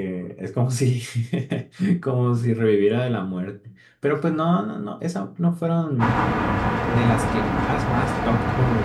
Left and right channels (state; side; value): identical; both; correlation 1.00